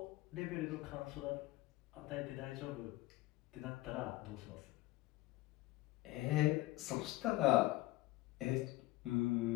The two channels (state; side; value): quieter; right; 18.3 dB